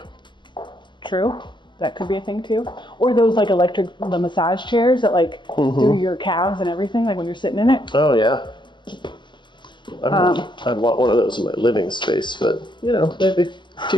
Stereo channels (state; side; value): late; right; 0.23 ms